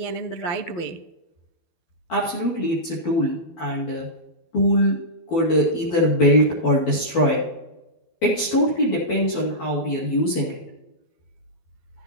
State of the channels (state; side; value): late; right; 12 ms